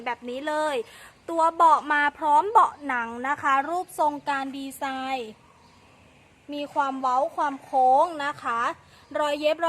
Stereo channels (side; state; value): both; identical; correlation 1.00